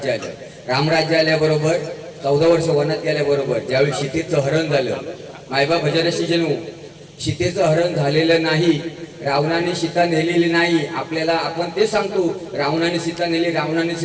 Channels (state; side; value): identical; both; correlation 1.00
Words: आलं. रामराज्य आल्याबरोबर 14 वर्ष वनात गेल्याबरोबर ज्यावेळी सीतेचं हरण झालं. मायबा भजनशी जणू सीतेचं हरण झालेलं नाही. रावणाने सीता नेलेली नाही. आपल्याला आपण ते सांगतो रावणाने सीता नेली